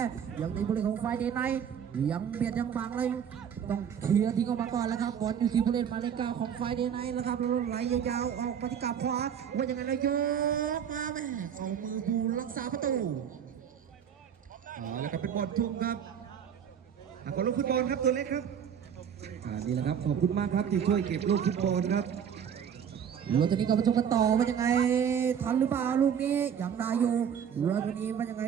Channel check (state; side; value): quieter; left; 8.2 dB